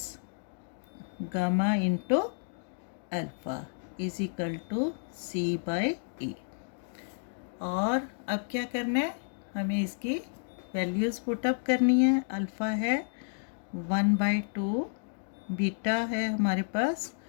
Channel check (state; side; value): silent; right; digital silence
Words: gamma into alpha is equal to C by A. और अब क्या करना है, हमें इसकी वैल्यूज़ पुटअप करनी है। अल्फ़ा है 1/2, बीटा है हमारे पास